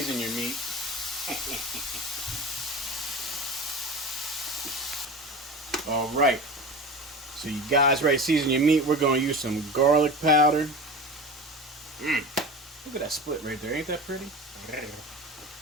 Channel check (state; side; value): normal; both; correlation 0.32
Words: your meat. All right. So you guys ready to season your meat? We're going to use some garlic powder. Look at that split right there. Ain't that pretty?